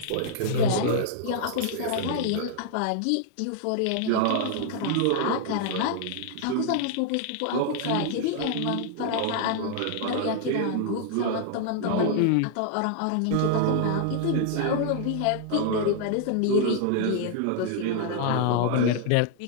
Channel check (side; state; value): both; different; correlation 0.00